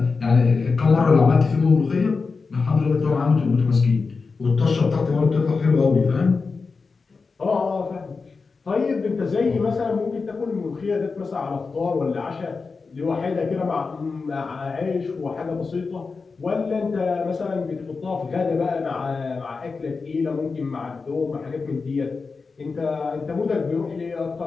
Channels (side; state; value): right; quieter; 4.5 dB